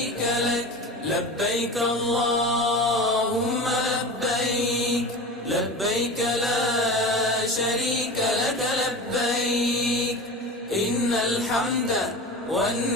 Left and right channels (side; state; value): both; normal; correlation 0.31